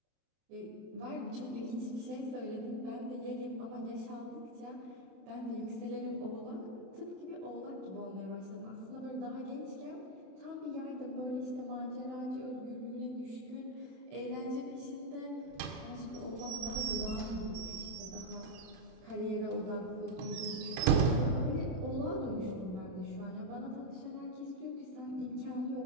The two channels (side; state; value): left; late; 32 ms